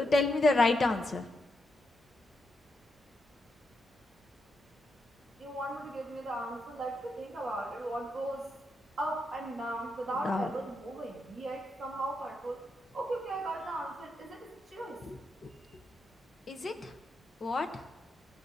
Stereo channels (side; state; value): both; normal; correlation 0.83